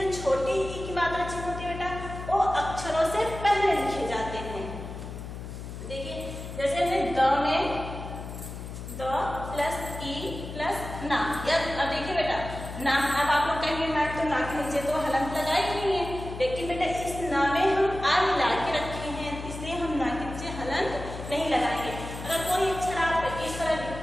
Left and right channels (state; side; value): noise; left; hum, 9 dB below the sound